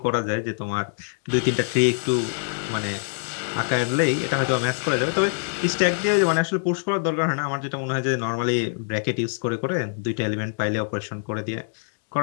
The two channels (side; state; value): right; silent; digital silence